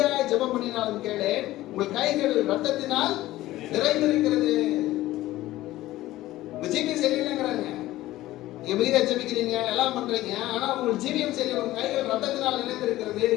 ஜெபம் பண்ணினாலும் கேளு, உங்கள் கைகள் ரத்தத்தினால் நிறைந்திருக்கிறது. உங்க ஜீவியம் சரியில்லைங்கிறாங்க. நீங்க மிகுதியா ஜெபிக்கிறீங்க, எல்லாம் பண்றீங்க, ஆனா உங்கள் ஜீவியம் சரியில்லை, உங்க கைகள் ரத்தத்தினால் நிறைந்திருக்கிறது.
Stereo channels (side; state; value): right; quieter; 16.1 dB